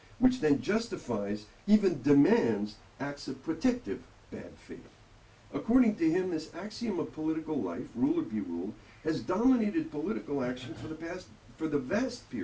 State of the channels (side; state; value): both; identical; correlation 1.00